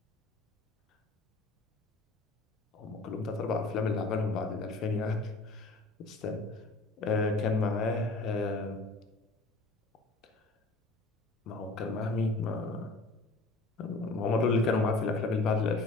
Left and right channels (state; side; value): quieter; right; 3.3 dB